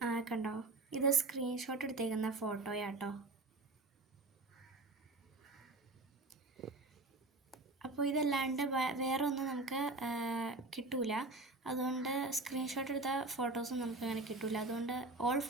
കണ്ടോ, ഇത് സ്ക്രീൻഷോട്ട് എടുത്തേക്കുന്ന ഫോട്ടോയാട്ടോ. അപ്പോൾ ഇതല്ലാണ്ട് വേറെ ഒന്നും നമുക്ക് കിട്ടൂല. അതുകൊണ്ട് സ്ക്രീൻഷോട്ട് എടുത്ത ഫോട്ടോസും നമുക്ക് അങ്ങനെ കിട്ടൂല. അതുകൊണ്ട് ഓൾ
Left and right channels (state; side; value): quieter; left; 3.1 dB